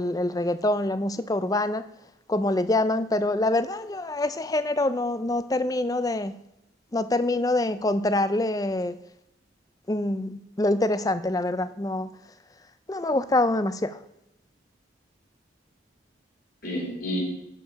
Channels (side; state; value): both; normal; correlation 0.64